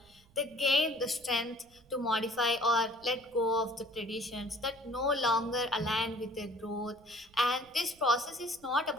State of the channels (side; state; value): right; noise; rumble, 29 dB below the sound